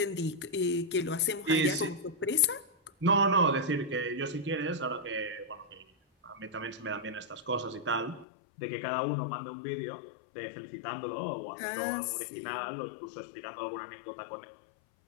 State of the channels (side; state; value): right; drops out; at 8.2 s